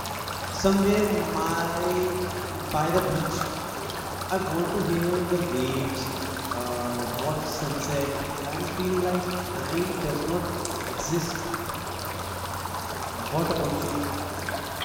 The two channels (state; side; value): identical; both; correlation 1.00